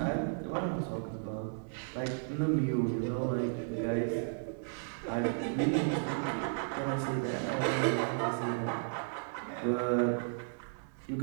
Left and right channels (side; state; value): left; silent; digital silence